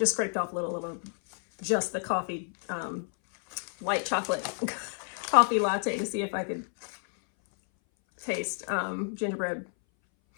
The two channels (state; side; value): silent; right; 58 dB below the other